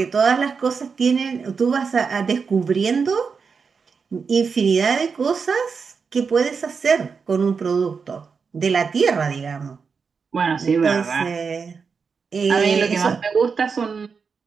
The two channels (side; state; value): left; quieter; 5.5 dB